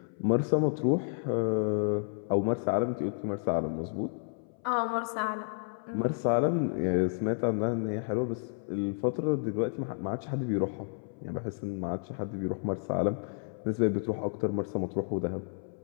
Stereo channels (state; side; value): silent; right; 57 dB below the other